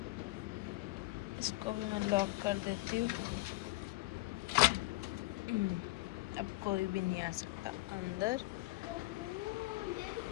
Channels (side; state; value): right; quieter; 20.6 dB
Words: इसको भी मैं लॉक कर देती हूँ। अब कोई भी नहीं आ सकता अंदर।